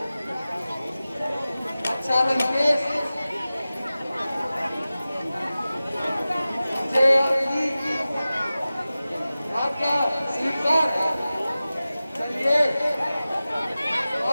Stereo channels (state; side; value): inverted; both; correlation -0.96